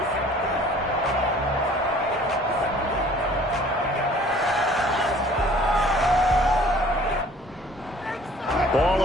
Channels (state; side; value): normal; both; correlation 0.52